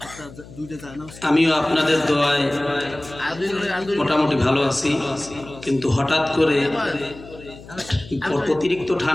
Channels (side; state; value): left; noise; hum, 18 dB below the sound